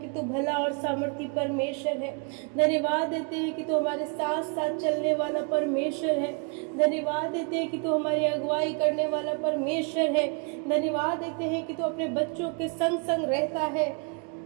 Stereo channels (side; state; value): left; quieter; 35.9 dB